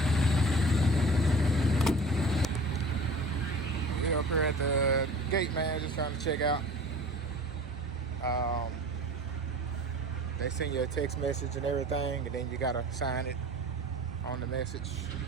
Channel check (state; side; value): normal; both; correlation 0.41